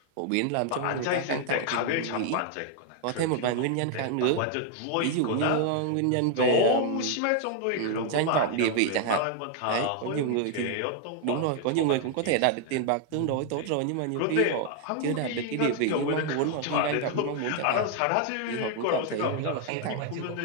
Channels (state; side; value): different; both; correlation 0.00